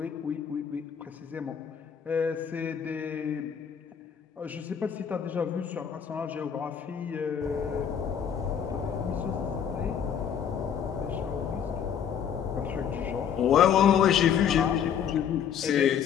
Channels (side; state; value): right; quieter; 8.1 dB